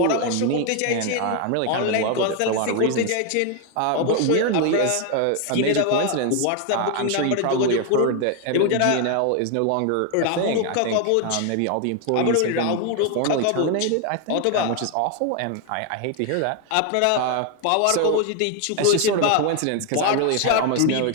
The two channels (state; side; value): different; both; correlation 0.01